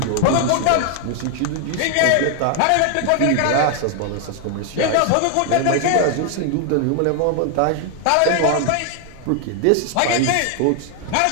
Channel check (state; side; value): different; both; correlation 0.00